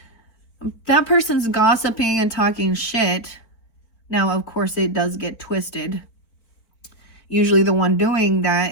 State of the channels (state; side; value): late; right; 4.4 ms